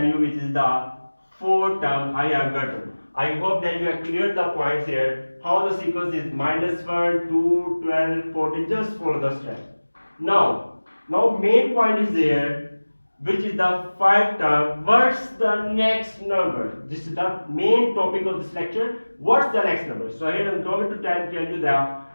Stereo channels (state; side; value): inverted; both; correlation -1.00